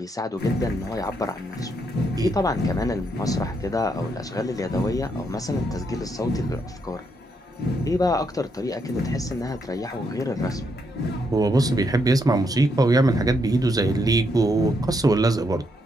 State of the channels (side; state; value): both; normal; correlation 0.77